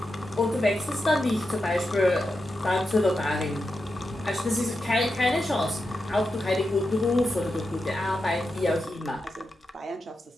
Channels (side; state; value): both; normal; correlation 0.88